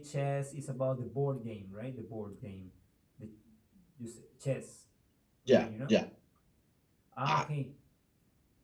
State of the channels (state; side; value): identical; both; correlation 1.00